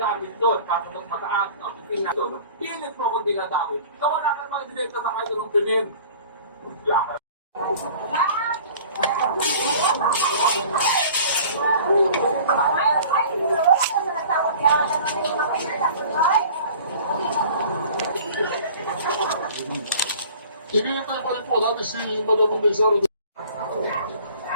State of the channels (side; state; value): both; inverted; correlation -0.46